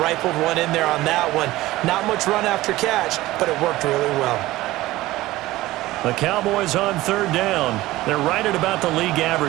rifled one in there on that one. Not much run after catch, but it worked really well. The Cowboys on 3rd down. They're right at about the league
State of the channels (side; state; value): left; quieter; 17.4 dB